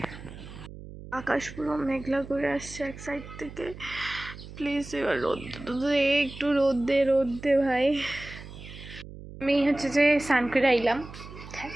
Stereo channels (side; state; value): right; noise; hum, 14 dB below the sound